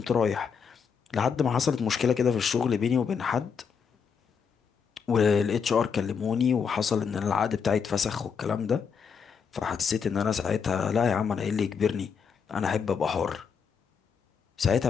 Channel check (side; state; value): right; quieter; 6.4 dB